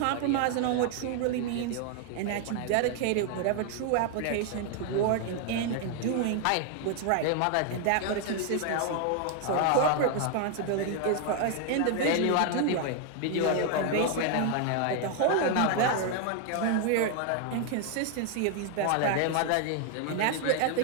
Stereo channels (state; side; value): different; both; correlation 0.00